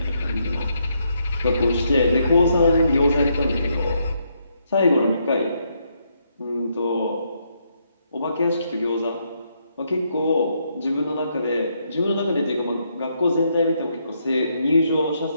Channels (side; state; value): both; inverted; correlation -0.76